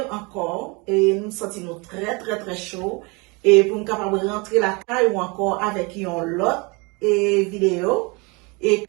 encore. Et nous nous sentons très, très, très chaud. Et pour nous capable de rentrer la caille ou encore avec une autre vidéo. Et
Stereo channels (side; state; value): left; quieter; 28.6 dB